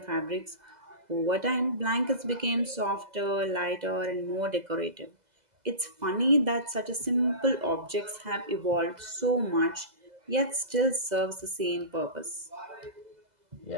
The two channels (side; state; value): left; late; 2.0 ms